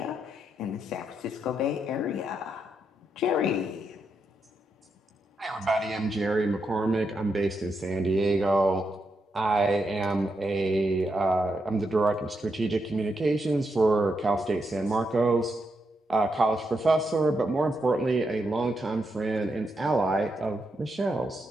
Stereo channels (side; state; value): both; normal; correlation 0.82